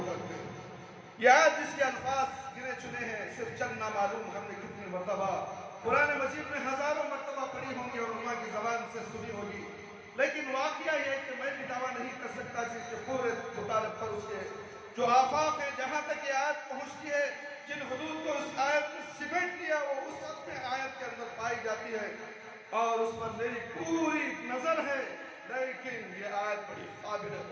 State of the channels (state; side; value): identical; both; correlation 1.00